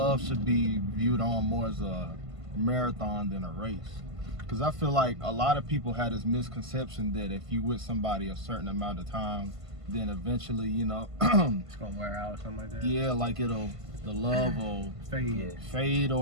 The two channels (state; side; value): late; left; 1.5 ms